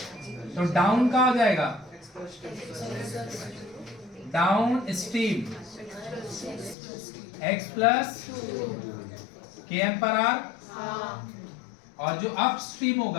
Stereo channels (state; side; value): drops out; right; at 6.8 s